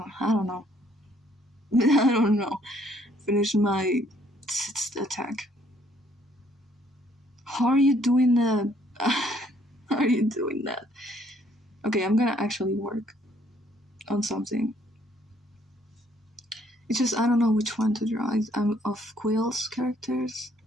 know. I don't know. Finish my attack. How are you doing that? How are you doing that? Okay, I'm gonna actually work on something. It's just I don't know which one to draw. I'm of Quill's characters.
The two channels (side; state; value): both; normal; correlation 0.65